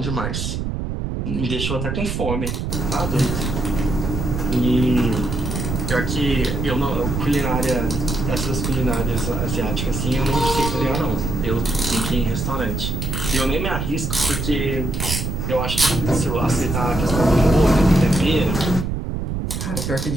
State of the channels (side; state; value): right; noise; rumble, 3 dB below the sound